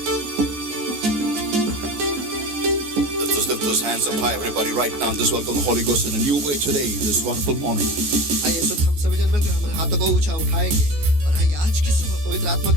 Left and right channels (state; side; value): late; left; 14 ms